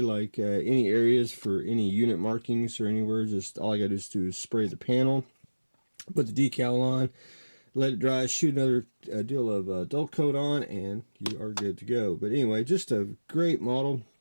like any areas for any unit markings or anywhere. Just all I got to do is spray the panel, put the decal on, let it dry, shoot another deal of dull coat on, and you are good to go. But anyway, just a great model.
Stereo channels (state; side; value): inverted; both; correlation -1.00